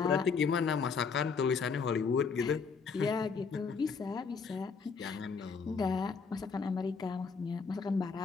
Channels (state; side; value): quieter; right; 5.4 dB